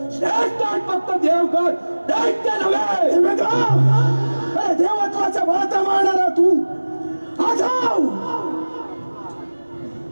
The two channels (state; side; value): inverted; both; correlation -1.00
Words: श्रेष्ठ फक्त देवगण, दैत्य नव्हे. अरे देवत्वाचा भाता मारणारा तू आठव